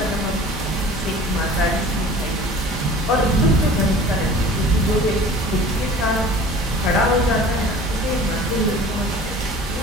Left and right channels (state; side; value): normal; both; correlation 0.44